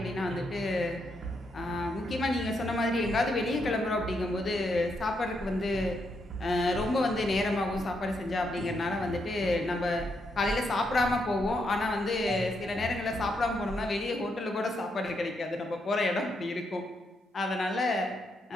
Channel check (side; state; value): both; normal; correlation 0.79